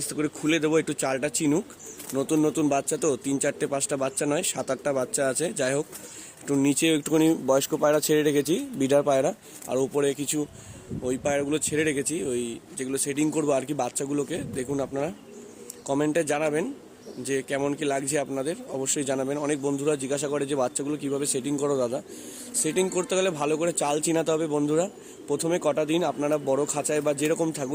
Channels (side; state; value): both; identical; correlation 1.00